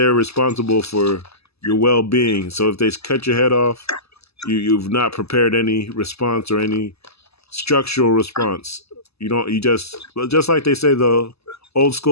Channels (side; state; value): right; late; 0.79 ms